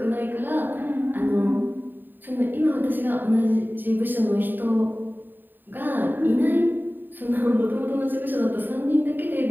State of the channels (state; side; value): late; left; 0.092 ms